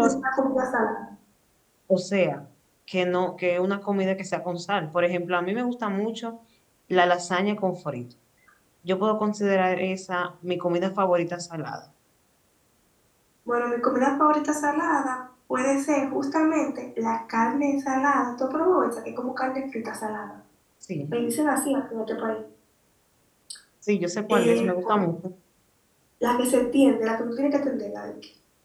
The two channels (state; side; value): identical; both; correlation 1.00